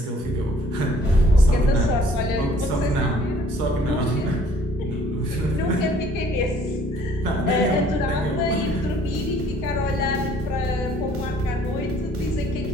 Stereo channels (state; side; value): normal; both; correlation 0.58